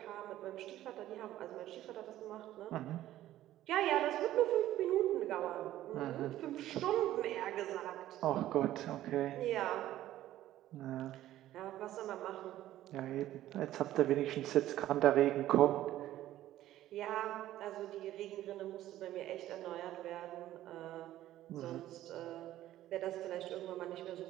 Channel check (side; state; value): left; quieter; 13.8 dB